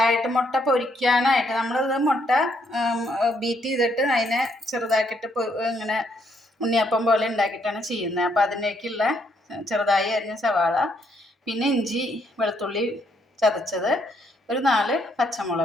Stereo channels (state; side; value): normal; both; correlation 0.72